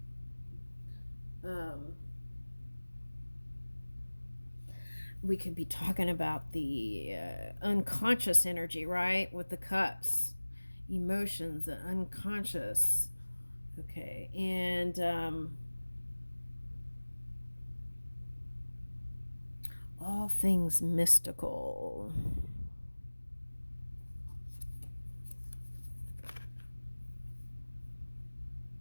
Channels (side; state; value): both; inverted; correlation -1.00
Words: We could be talking about the unconscious energy, right? With the cups, emotions, the unconscious. Okay, and all things mystical.